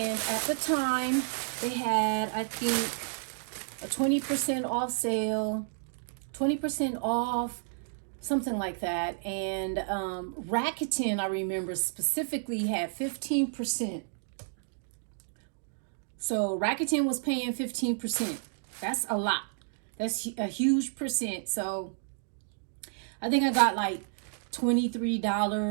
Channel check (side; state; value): left; silent; digital silence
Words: at the time, they had, I think, a 20% off sale, 20% off, something like that. And Rakuten, I remember, specifically had 15%. So Rakuten was paying 15%. That's a lot. That's a huge percent. So I think I got like